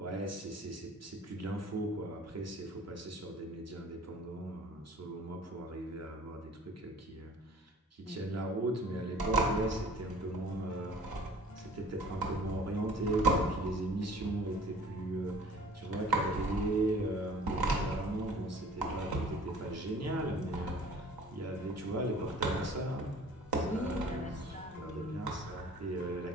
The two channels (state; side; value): normal; both; correlation 0.49